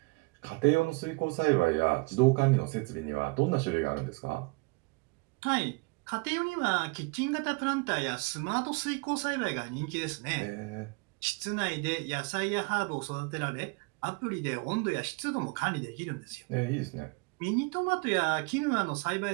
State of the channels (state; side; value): quieter; left; 28.8 dB